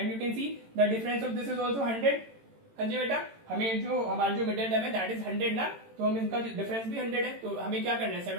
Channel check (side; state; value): left; late; 18 ms